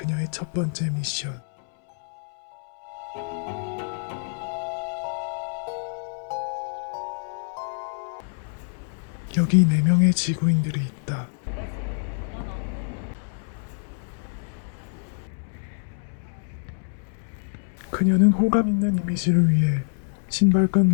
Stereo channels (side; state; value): right; silent; 61 dB below the other